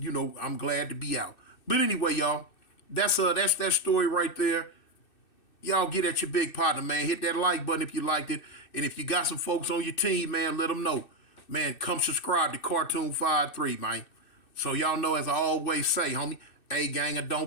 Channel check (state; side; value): late; right; 2.6 ms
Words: I'm glad to be out. But anyway, y'all, that's that story right there. Y'all get at your big partner, man. Hit that like button if you liked it. And if you got some folks on your team, man, let them know. Man, come subscribe to Cartoon 53, man. So y'all know, as I always say, homie, A gang or